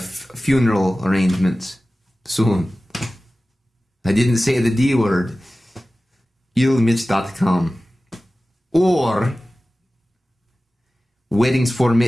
funeral arrangements soon. I didn't say the D word. illmitch.com or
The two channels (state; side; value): normal; both; correlation 0.96